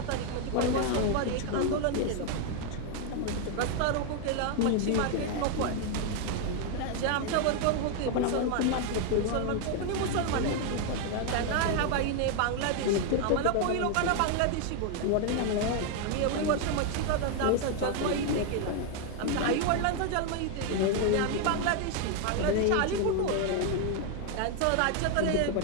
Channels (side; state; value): both; different; correlation 0.01